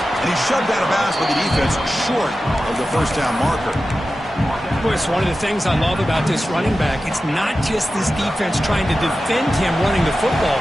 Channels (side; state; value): both; normal; correlation 0.93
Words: And he's shoved out of bounds by the defense short of the first down marker. Chris, one of the things I love about this running back, it's not just this defense trying to defend him running the football.